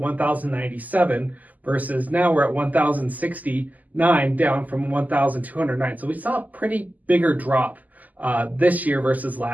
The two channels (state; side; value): late; left; 0.079 ms